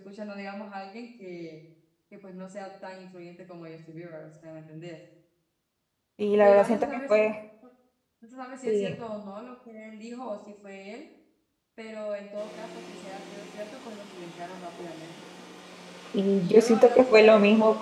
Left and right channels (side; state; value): both; identical; correlation 1.00